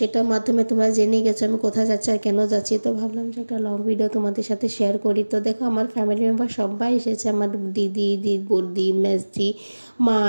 মাধ্যমে তোমরা জেনে গেছো আমি কোথায় যাচ্ছি আর কেন যাচ্ছি। তো ভাবলাম যে একটা লং ভিডিও তোমাদের সাথে শেয়ার করি। তো দেখো, আমার ফ্যামিলি মেম্বার সবাই এসেছে, আমার দিদি, বৌদি, মেজদি, মা,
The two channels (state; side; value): inverted; both; correlation -1.00